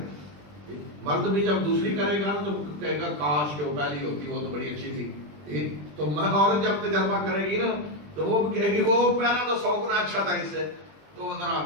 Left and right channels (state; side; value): late; left; 20 ms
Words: مرد بھی جب دوسری کرے گا تو کہے گا کاش کہ وہ پہلی ہوتی وہ تو بڑی اچھی تھی، تو عورت جب تجربہ کرے گی نا تو وہ کہے گی وہ پہلا تو 100 گنا اچھا تھا اس سے، تو ذرا